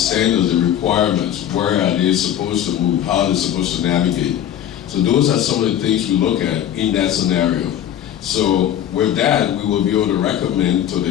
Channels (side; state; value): right; quieter; 10.7 dB